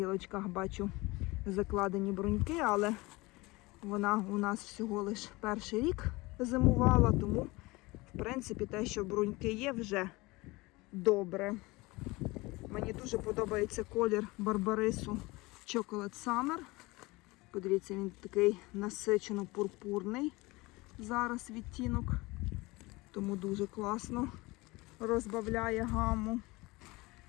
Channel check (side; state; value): right; quieter; 22.6 dB